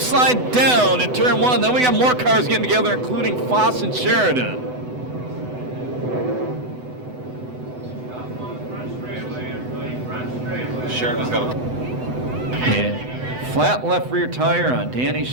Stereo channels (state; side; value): late; left; 8.0 ms